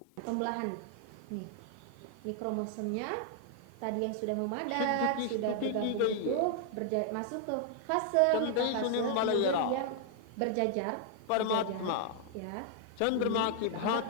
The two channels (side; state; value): both; different; correlation 0.00